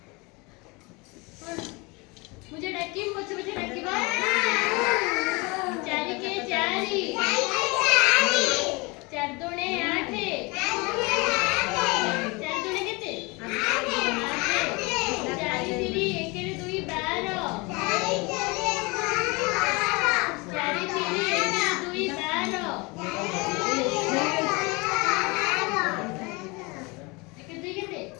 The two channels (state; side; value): quieter; right; 26.7 dB